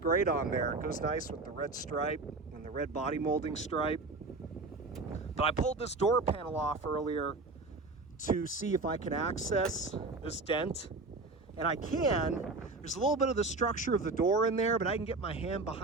on there. It goes nice with the red stripe and the red body molding stripe. But I pulled this door panel off earlier to see if I can access this dent. And I can. There's a little bit of the structure of the door in there, but I can get my hand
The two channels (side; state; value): left; quieter; 3.6 dB